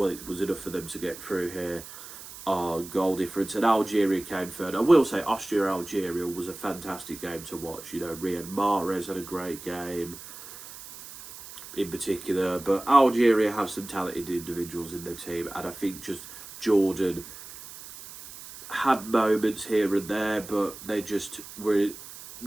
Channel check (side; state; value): right; noise; hiss, 14 dB below the sound